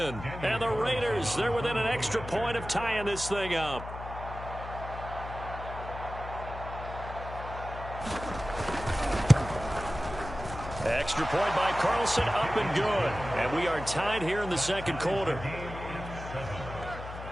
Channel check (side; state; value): left; noise; hum, 10 dB below the sound